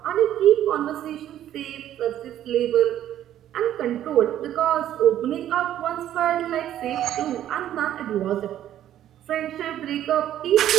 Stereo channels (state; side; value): quieter; left; 11.7 dB